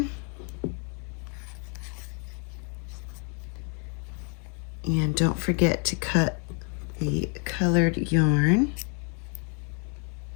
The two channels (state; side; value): quieter; right; 37.2 dB